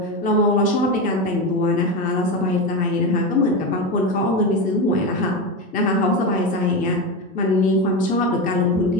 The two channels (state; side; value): normal; both; correlation 0.17